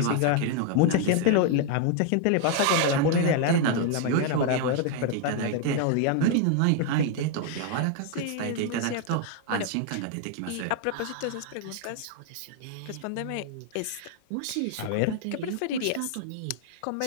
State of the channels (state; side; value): different; both; correlation 0.00